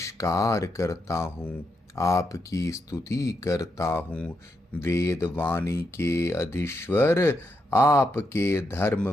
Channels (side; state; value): both; normal; correlation 0.82